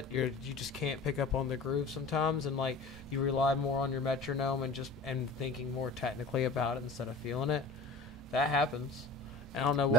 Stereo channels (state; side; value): normal; both; correlation 0.39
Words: you just can't pick up on the groove sometimes, and like you rely more on your metronome and thinking more technically about it instead of feeling it. That happens. I don't know